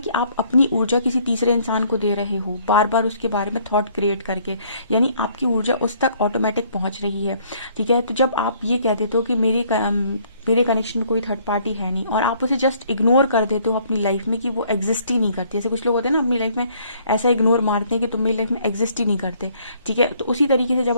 आप अपनी ऊर्जा किसी तीसरे इंसान को दे रहे हो, बार बार उसके बारे में थॉट क्रिएट करके। यानी आपकी ऊर्जा उस तक ऑटोमेटिक पहुंच रही है। ठीक है, तो जब आप ये कह देते हो कि मेरे कनेक्शन में कोई थर्ड पार्टी है नहीं, और आप उसे जस्ट इग्नोर कर देते हो अपनी लाइफ में कि वो एग्जिस्ट ही नहीं करती। जैसे कुछ लोग होते हैं ना अपनी लाइफ में ऐसा इग्नोर मारते हैं कि तुम मेरी लाइफ में एग्जिस्ट ही नहीं करते, ठीक है। तो उसी तरीके से जब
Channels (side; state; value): both; inverted; correlation -0.62